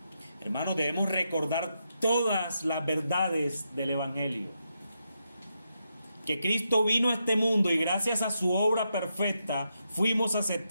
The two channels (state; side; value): inverted; both; correlation -0.83